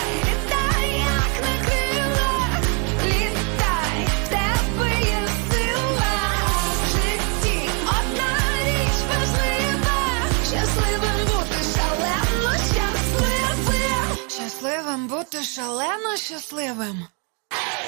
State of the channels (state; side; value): quieter; left; 36.4 dB